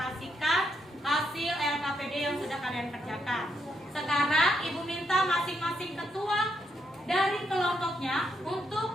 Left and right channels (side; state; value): both; normal; correlation 0.78